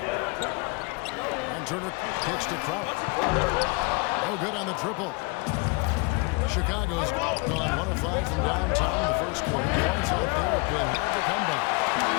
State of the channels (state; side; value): quieter; right; 29.0 dB